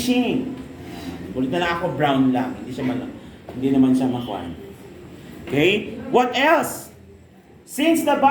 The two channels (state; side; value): identical; both; correlation 1.00